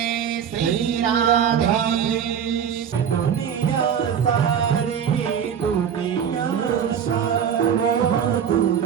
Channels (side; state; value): left; quieter; 8.1 dB